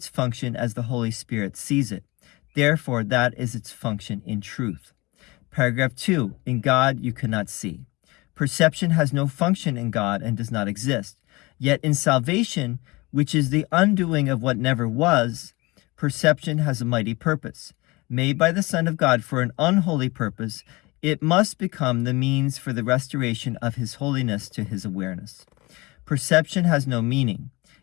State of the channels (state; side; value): quieter; right; 23.5 dB